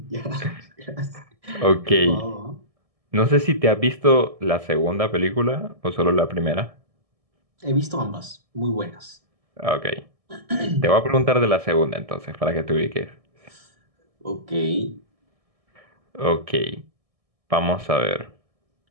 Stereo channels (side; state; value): left; late; 1.6 ms